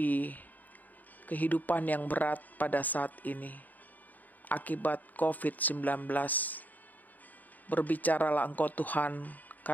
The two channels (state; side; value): late; right; 0.082 ms